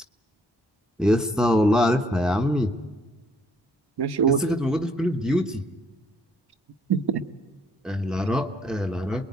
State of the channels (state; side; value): normal; both; correlation 0.66